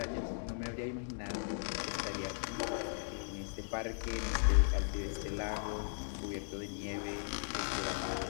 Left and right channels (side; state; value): right; silent; digital silence